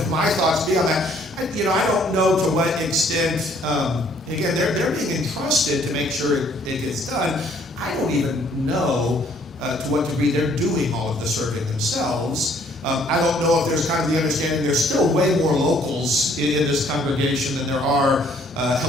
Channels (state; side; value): normal; both; correlation 0.62